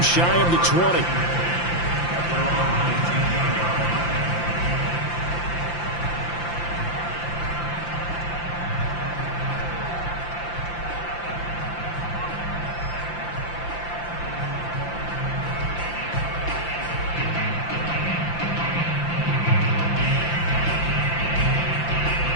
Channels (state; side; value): late; right; 5.8 ms